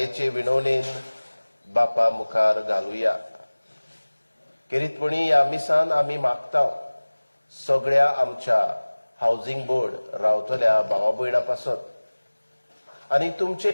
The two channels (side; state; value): both; inverted; correlation -1.00